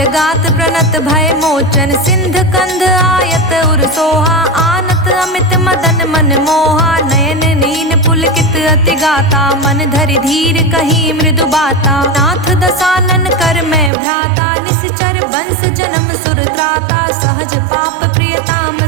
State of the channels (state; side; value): drops out; left; at 13.9 s